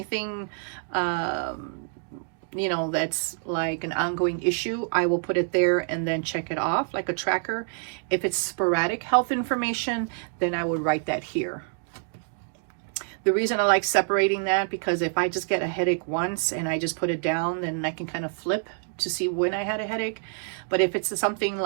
you know, that's like an ongoing issue, I will put it there and then check it off like a tracker. If it's sporadic health information, then I would write that here. The reason I like separating that, because if I just get a headache once and I just put it down, then I can kind of flip to see when I had a headache. But if it's something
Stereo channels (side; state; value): left; silent; 60 dB below the other